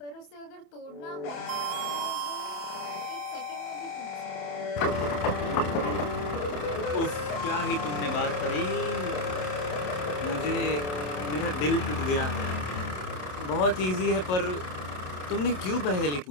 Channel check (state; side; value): late; right; 27 ms